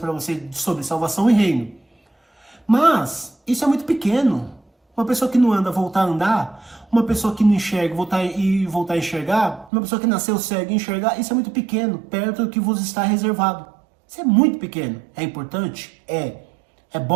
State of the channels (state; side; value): drops out; left; at 9.7 s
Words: vocês sobre salvação e reino. Mas isso é muito pequeno. Uma pessoa que não anda voltar a andar, uma pessoa que não enxerga voltar a enxergar, uma pessoa que nasceu cega e enxergar, isso é muito pequeno, perto do que vos está reservado. Isso é muito pequeno. É importante? É. É